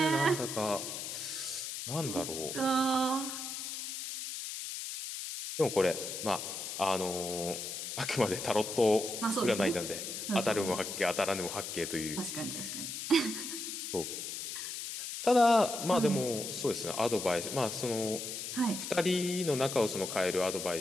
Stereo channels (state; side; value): noise; left; hiss, 6 dB below the sound